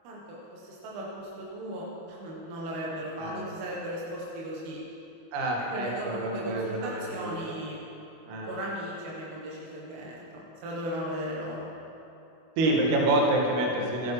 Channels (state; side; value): late; left; 25 ms